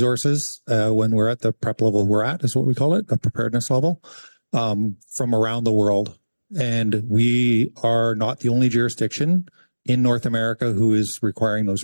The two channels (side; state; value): both; inverted; correlation -1.00